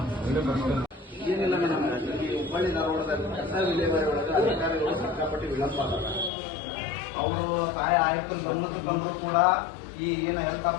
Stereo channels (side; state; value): right; drops out; at 6.3 s